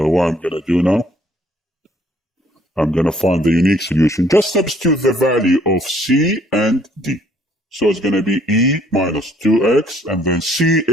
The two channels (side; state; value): both; normal; correlation 0.63